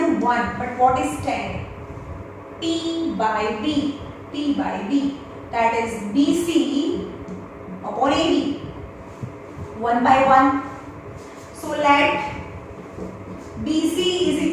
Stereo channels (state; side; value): identical; both; correlation 1.00